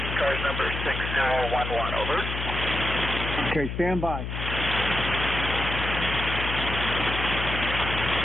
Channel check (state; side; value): noise; left; hum, 5 dB below the sound